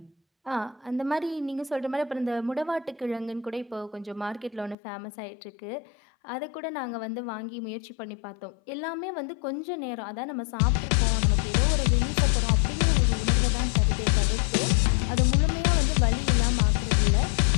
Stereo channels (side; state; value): right; drops out; at 4.8 s